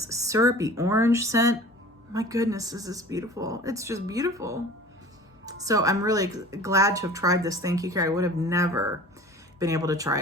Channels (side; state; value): both; normal; correlation 0.42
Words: syrupy orange scent. My goodness, this is beautiful. It's just beautiful. So I'm really glad to have tried this. Thank you, Carrie. I would have never been able to try